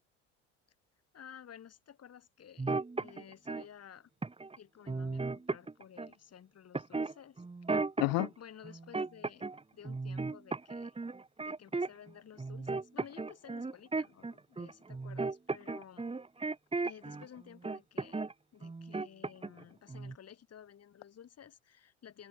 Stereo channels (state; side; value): normal; both; correlation 0.49